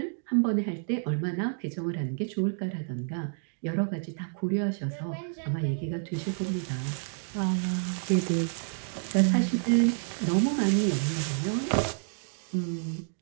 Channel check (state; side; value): silent; left; digital silence